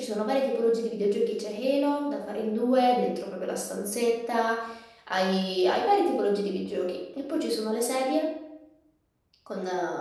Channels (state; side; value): identical; both; correlation 1.00